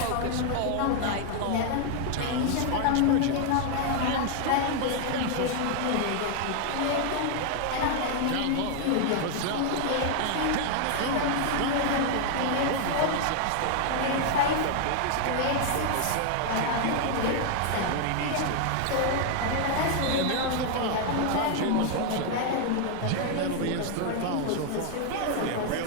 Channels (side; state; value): both; different; correlation 0.00